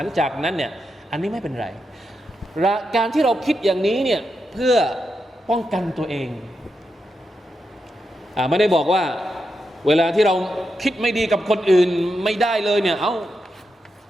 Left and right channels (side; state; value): both; normal; correlation 0.86